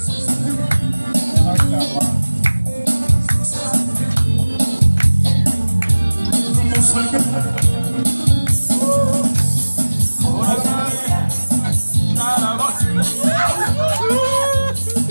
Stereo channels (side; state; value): both; inverted; correlation -1.00